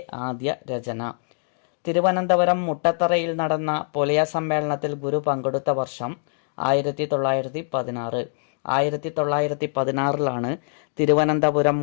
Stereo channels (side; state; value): right; silent; digital silence